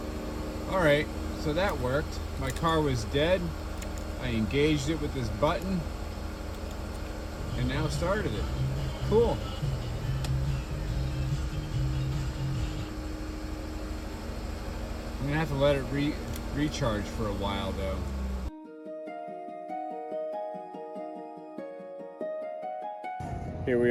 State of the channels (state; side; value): identical; both; correlation 1.00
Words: All right, so that worked. My car was dead. I engaged it with this button and now started it. Cool. I'm gonna have to let it recharge for a while though. Here